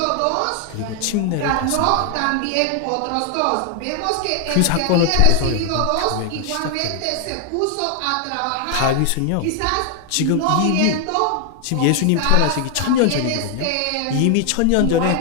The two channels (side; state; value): both; different; correlation 0.00